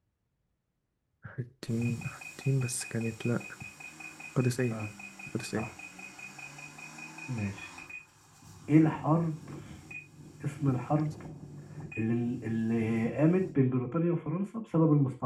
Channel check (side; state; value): both; identical; correlation 1.00